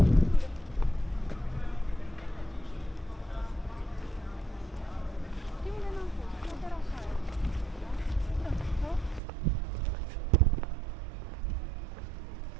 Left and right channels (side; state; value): left; drops out; at 9.2 s